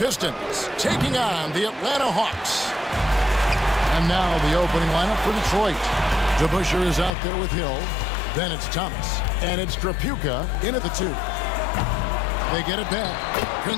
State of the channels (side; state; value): right; drops out; at 7.1 s